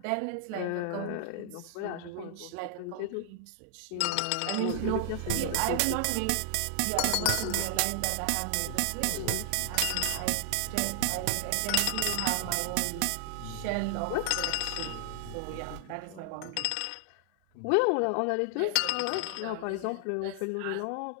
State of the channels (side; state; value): both; different; correlation 0.00